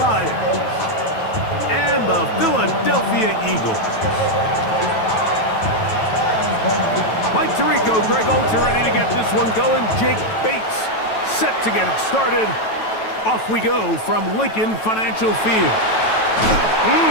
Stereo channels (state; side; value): late; right; 9.1 ms